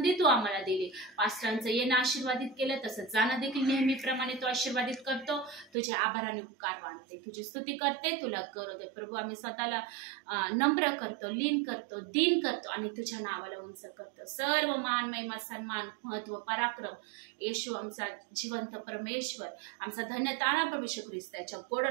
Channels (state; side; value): drops out; left; at 5.7 s